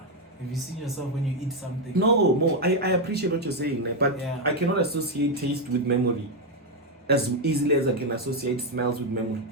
you seen yourself when you eat something? No, I appreciate what you're saying, but I cannot associate taste with memory as easily as I can associate smells with memory.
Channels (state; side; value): normal; both; correlation 0.04